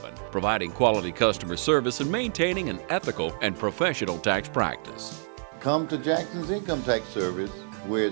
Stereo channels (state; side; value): silent; left; 57 dB below the other